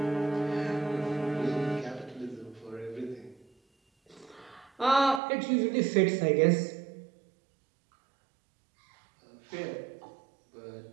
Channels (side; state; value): left; drops out; at 5.2 s